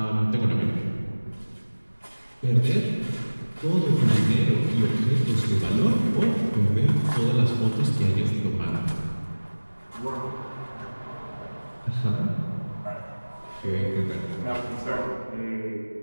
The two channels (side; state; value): both; inverted; correlation -1.00